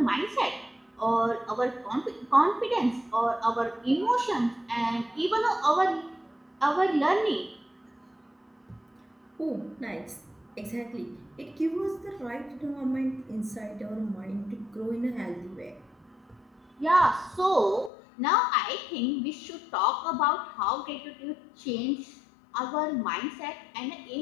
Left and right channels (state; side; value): drops out; right; at 17.9 s